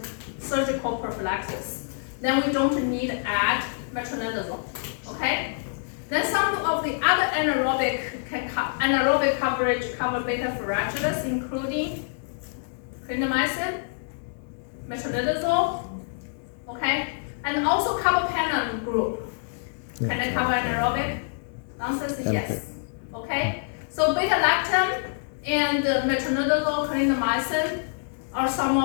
surgical prophylaxis, then we don't need to add metronidazole, okay? Then some of the other anaerobic coverage cover beta fragilis, including clindamycin, metronidazole, okay? And also carbapenem group. Can I cover anaerobic? The answer is yes. Okay? So beta-lactam and metronidazole, clindamycin are some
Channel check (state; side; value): silent; right; digital silence